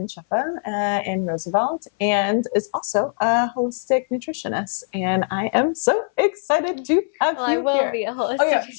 Shefa in Roosevelt, and is also a holistic nutritionist. And I am so excited to have you I will here. be a holistic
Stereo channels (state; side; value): silent; right; 60 dB below the other